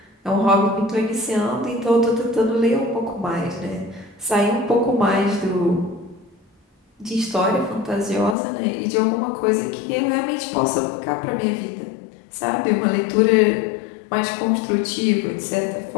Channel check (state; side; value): drops out; right; at 8.3 s